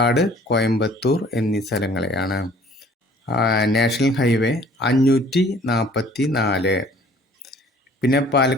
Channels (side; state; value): both; normal; correlation 0.54